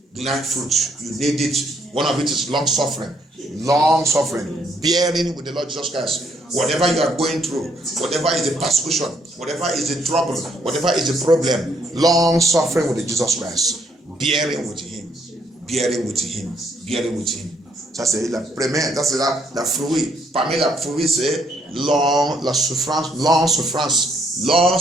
The 9th fruit. You need it. One of it is long suffering. Long suffering. Bearing with the Lord Jesus Christ. Whatever you are going through, whatever is the persecution, whatever is the trouble, whatever is the problem, long suffering with Jesus Christ, bearing with him, bearing with him, bearing with him. Ça c'est la première, ça c'est la fruit. Parmi la fruit c'est la souffrance, long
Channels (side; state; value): both; normal; correlation 0.70